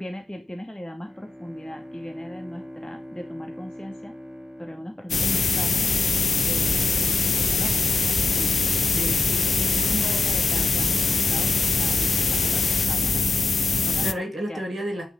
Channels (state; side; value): quieter; right; 3.6 dB